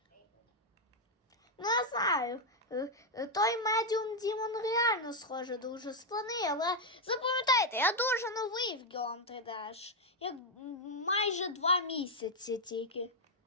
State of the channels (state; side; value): normal; both; correlation 0.01